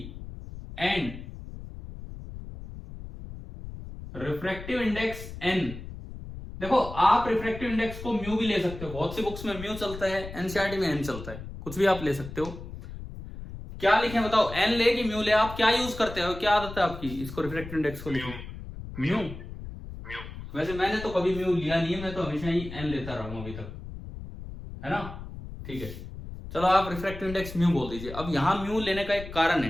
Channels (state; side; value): noise; left; rumble, 11 dB below the sound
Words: and refractive index N। देखो आप रिफ्रैक्टिव इंडेक्स को म्यू भी ले सकते हो, बहुत सी बुक्स में म्यू चलता है, एनसीईआरटी में N चलता है, कुछ भी आप ले सकते हो। क्या लिखें बताओ, N ले कि म्यू ले? आप क्या यूज करते हो, क्या आदत है आपकी इसको रिफ्रैक्टिव इंडेक्स को लिखने? म्यू। वैसे मैंने तो कभी म्यू लिया नहीं है, मैं तो हमेशा ही N लेता रहा हूं अभी तक, है ना? ठीक है, चलो आप रिफ्रैक्टिव इंडेक्स म्यू बोल दीजिए। अब यहां म्यू लेने का एक कारण